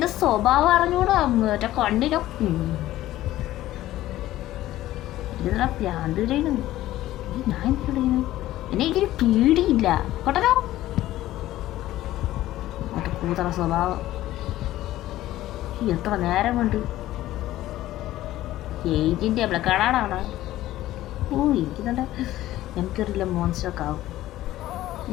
സ്വഭാവം അറിഞ്ഞൂടാ. മറ്റേ കണ്ണിലോ ഇതിനാ ഭ്രാന്ത് ചെയ്യുന്നു. ഞാൻ എന്തിനു എന്നെ ഇതിന് പേടിയില്ല കേട്ടോ. മറ്റേ കൂതറ സ്വഭാവം. എത്ര നേരം കൊണ്ട് ഏജിന്റെ കടാടാണ്. ഓ എനിക്കുന്നുണ്ട് എനിക്കറിയില്ല മോൺസ്റ്ററൊക്കെ ആവും.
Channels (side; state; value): right; quieter; 14.9 dB